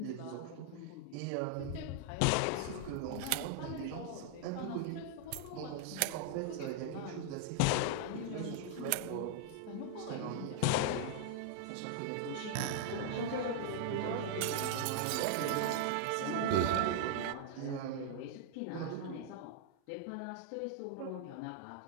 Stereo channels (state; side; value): different; both; correlation 0.00